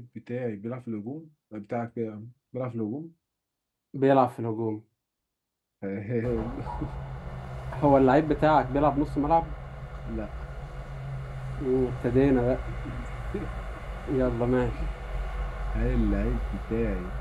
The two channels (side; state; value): both; identical; correlation 1.00